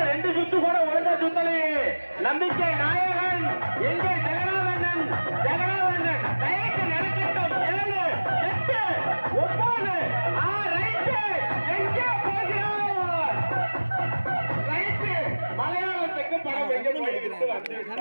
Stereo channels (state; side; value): inverted; both; correlation -1.00